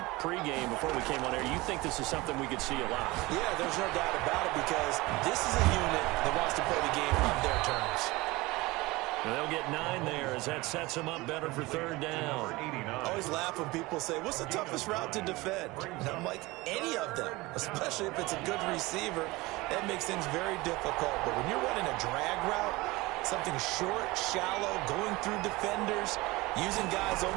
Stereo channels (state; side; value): quieter; left; 21.6 dB